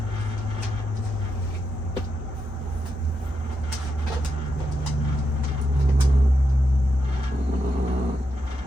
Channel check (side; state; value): both; normal; correlation 0.84